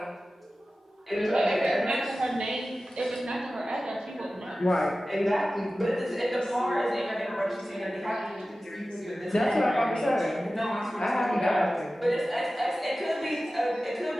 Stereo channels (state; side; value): normal; both; correlation 0.95